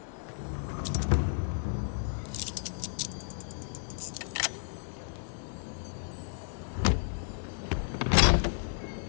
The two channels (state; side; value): silent; right; digital silence